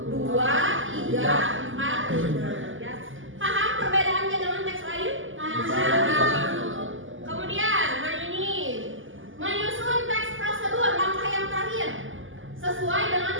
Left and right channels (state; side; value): late; left; 0.58 ms